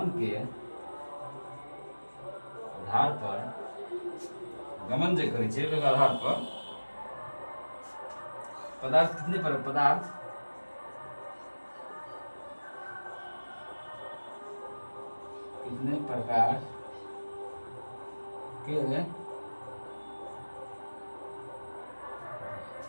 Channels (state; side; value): inverted; both; correlation -1.00